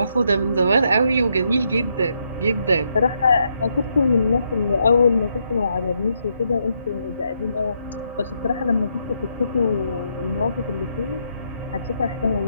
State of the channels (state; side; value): inverted; both; correlation -0.77